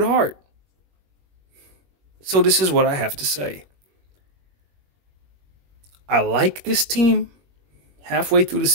heart. So this is what I have to say. I like this team. Halfway through the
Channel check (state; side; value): late; left; 21 ms